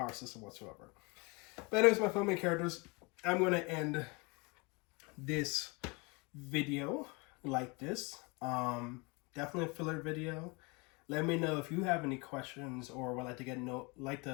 system whatsoever. But anyways, my filming characters, I'm going to end this video like this. Definitely a filler video. Let me know if you have any questions or would like to can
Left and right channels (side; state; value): right; quieter; 28.6 dB